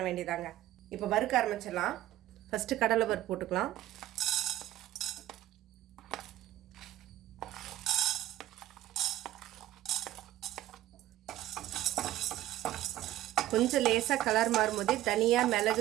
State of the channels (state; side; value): quieter; left; 14.4 dB